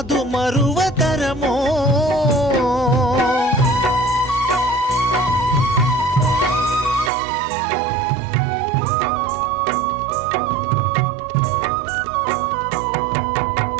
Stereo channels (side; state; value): left; drops out; at 7.1 s